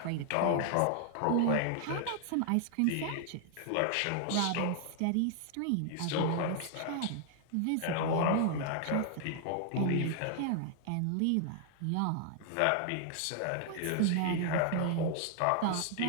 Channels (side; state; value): both; different; correlation 0.00